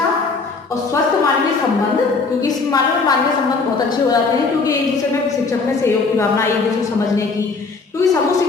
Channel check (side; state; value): right; quieter; 4.3 dB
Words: और स्वस्थ मानवीय संबंध, क्योंकि इस मानवीय संबंध बहुत अच्छे हो जाते हैं क्योंकि एक दूसरे में शिक्षक में सहयोग की भावना, एक दूसरे समझने की, क्योंकि समूह